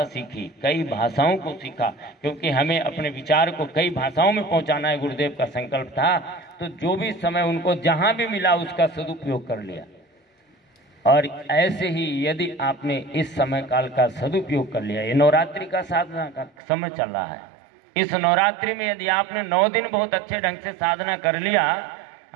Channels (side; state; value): left; drops out; at 16.5 s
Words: सीखी, कई भाषाओं को सीखा, क्योंकि हमें अपने विचार को कई भाषाओं में पहुंचाना है, गुरुदेव का संकल्प था। तो जो भी समय उनको जहां भी मिला उसका सदुपयोग कर लिया। और ऐसे ही यदि आपने इस समय काल का सदुपयोग कर लिया, ये नवरात्रि का साधना का समय चल रहा है, इस नवरात्रि में यदि आपने 9 दिन बहुत अच्छे ढंग से साधना कर लिया,